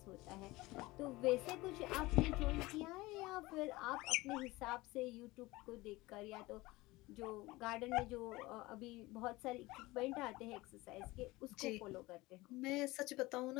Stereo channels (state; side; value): quieter; right; 20.7 dB